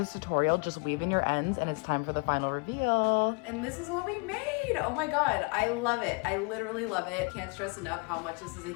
tutorial. Just weave in your ends and it's time for the final reveal. And this is what we made. Oh my God, I love it. I literally love it. Can't stress enough how much this is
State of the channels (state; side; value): quieter; right; 31.9 dB